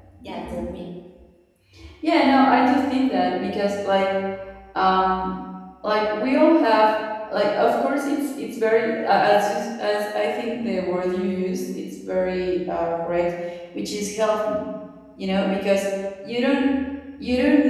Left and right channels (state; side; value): identical; both; correlation 1.00